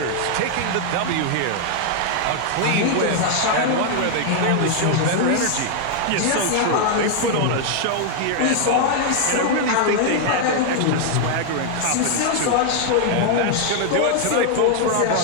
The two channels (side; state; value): both; different; correlation 0.00